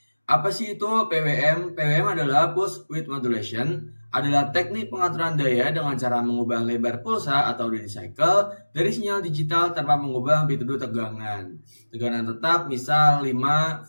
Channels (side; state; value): both; inverted; correlation -1.00